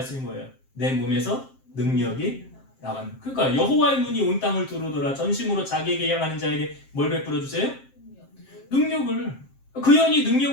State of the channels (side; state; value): right; late; 7.5 ms